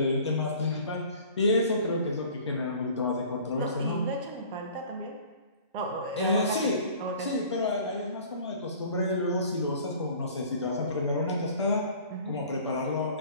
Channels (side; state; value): both; inverted; correlation -0.47